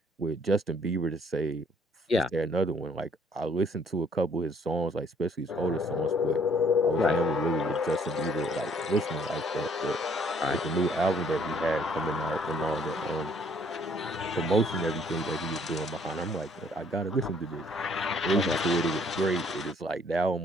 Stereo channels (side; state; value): both; normal; correlation 0.62